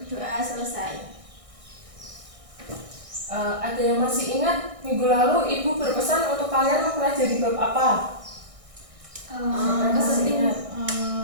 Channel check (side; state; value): left; late; 1.6 ms